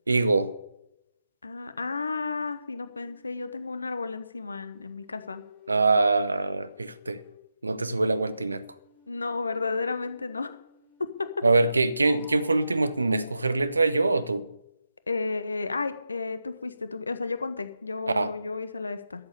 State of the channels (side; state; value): both; inverted; correlation -0.88